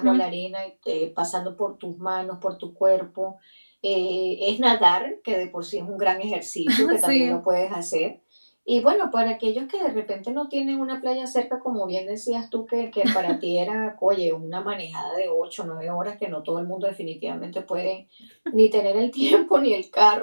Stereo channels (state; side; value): inverted; both; correlation -1.00